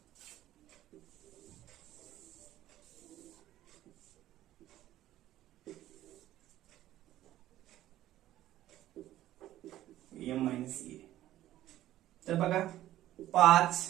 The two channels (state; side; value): quieter; left; 13.9 dB